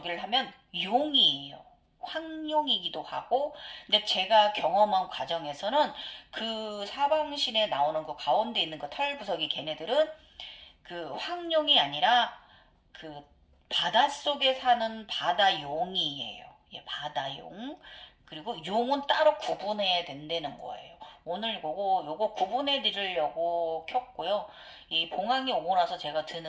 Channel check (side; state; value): both; identical; correlation 1.00